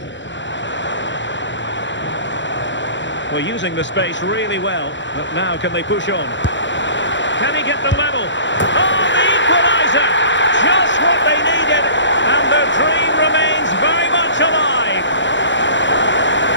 Well, using the space really well, but now can they push on? Can he get the level? Oh, the equaliser! Just what they needed, and the dream remains very much alive.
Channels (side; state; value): right; late; 0.54 ms